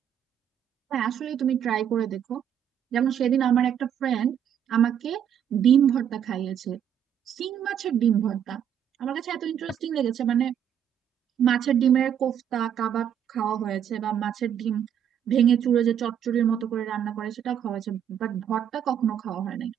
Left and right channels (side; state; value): left; quieter; 9.1 dB